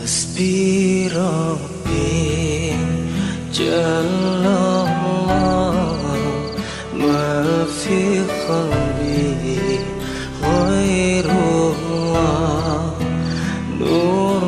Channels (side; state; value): both; identical; correlation 1.00